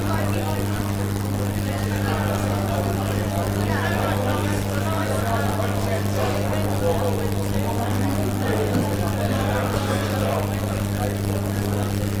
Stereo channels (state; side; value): identical; both; correlation 1.00